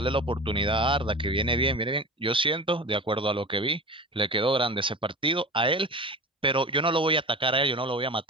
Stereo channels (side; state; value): both; normal; correlation 0.33